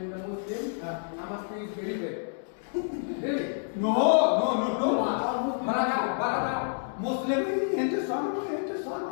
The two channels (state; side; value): silent; right; digital silence